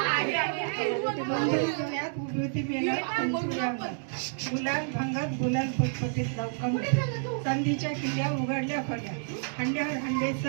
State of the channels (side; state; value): left; silent; digital silence